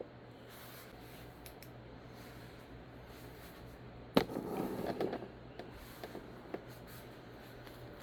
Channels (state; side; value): identical; both; correlation 1.00